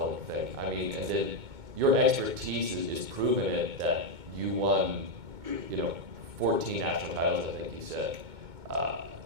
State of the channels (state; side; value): late; left; 2.2 ms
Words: thing. I mean, and then your expertise is proven it that you won, 14 national titles, I think you said.